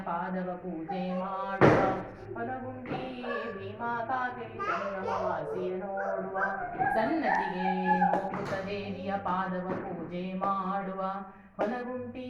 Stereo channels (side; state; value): both; identical; correlation 1.00